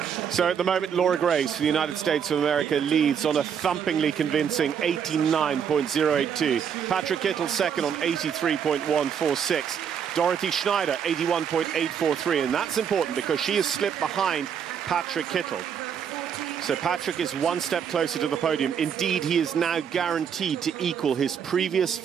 So at the moment, Laura Graves for the United States of America leads on a thumpingly convincing 89.082. Patrik Kittel second on 83.146. Dorothee Schneider 81.843, and that's important because she has slipped behind Patrik Kittel. So Patrik is one step closer to the podium. Indeed, he is now guaranteed to equal his previous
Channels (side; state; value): left; quieter; 7.8 dB